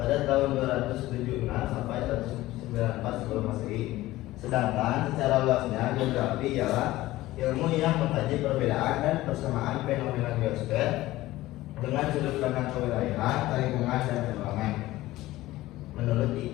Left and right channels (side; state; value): right; quieter; 17.0 dB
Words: tahun 276 sampai 194 sebelum Masehi. Sedangkan secara luasnya geografi ialah ilmu yang mengkaji perbedaan dan persamaan fenomena geosfer dengan sudut pandang kewilayahan, lingkungan dan ruangan. Menurut